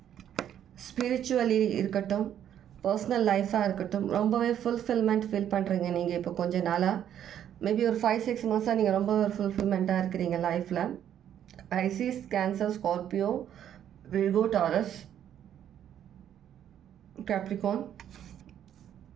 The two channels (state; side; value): quieter; left; 10.1 dB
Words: ஸ்பிரிச்சுவலி இருக்கட்டும், பர்சனல் லைஃபாக இருக்கட்டும், ரொம்பவே ஃபுல்ஃபில்மெண்ட் ஃபீல் பண்ணுறீங்க நீங்கள் இப்போ கொஞ்ச நாளாக. மேபி ஒரு 5-6 மாதம் நீங்கள் ரொம்ப ஃபுல்ஃபில்மெண்ட்டாக இருக்கிறீங்க லைஃப்பில். ஐசிஸ், cancer, Scorpio, Virgo, Taurus, Capricorn.